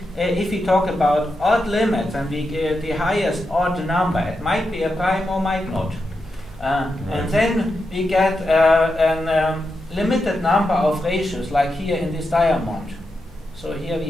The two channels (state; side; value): normal; both; correlation 0.87